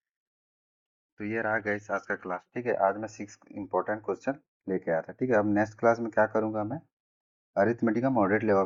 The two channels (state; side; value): identical; both; correlation 1.00